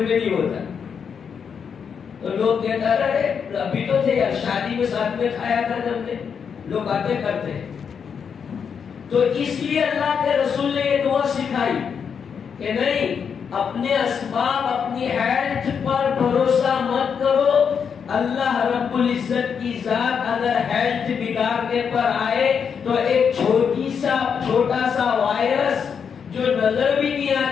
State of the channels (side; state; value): right; quieter; 6.8 dB